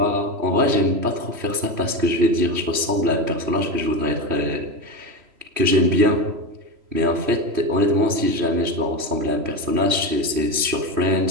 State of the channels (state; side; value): late; left; 3.1 ms